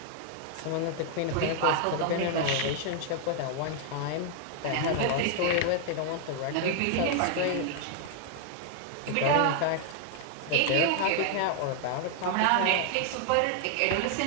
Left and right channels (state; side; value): different; both; correlation 0.00